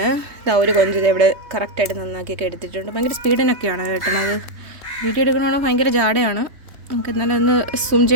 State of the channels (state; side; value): late; left; 3.1 ms